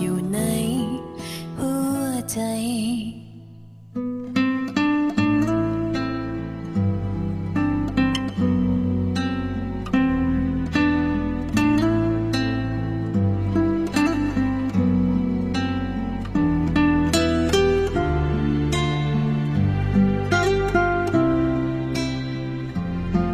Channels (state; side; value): identical; both; correlation 1.00